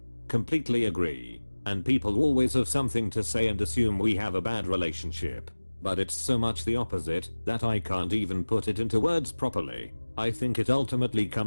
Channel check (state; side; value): inverted; both; correlation -1.00